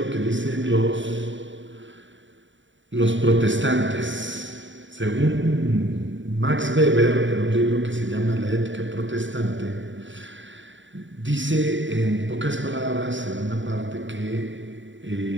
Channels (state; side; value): late; left; 0.55 ms